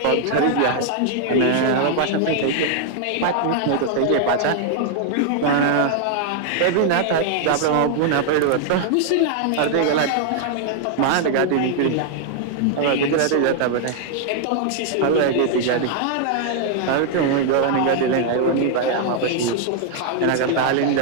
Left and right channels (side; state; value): both; different; correlation 0.00